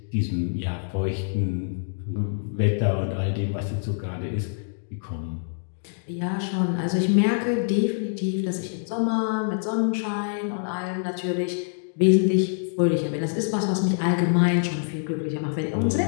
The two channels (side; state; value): right; silent; digital silence